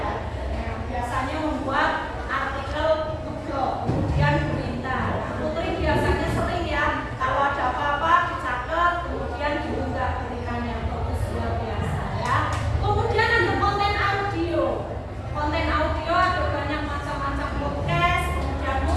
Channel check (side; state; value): both; identical; correlation 1.00